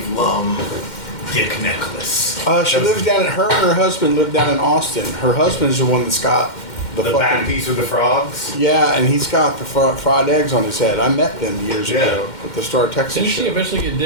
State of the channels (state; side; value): late; right; 2.1 ms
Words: Lum dick necklace? She lived down. Her and her husband lived down in Austin. Her husband's the one that's got The back piece with the frogs? Yeah, and he's got the fried eggs on his head. I met them years ago at the Star Texas Didn't she show. eventually get